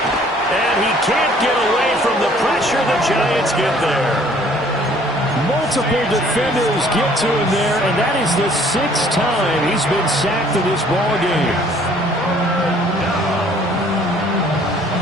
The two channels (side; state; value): both; normal; correlation 0.58